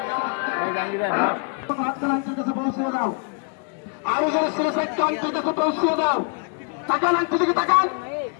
আরো যারা সিলেক্ট কাছে পৌঁছিয়ে দাও তাকান আংটি দিকে তাকান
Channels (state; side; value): quieter; right; 38.7 dB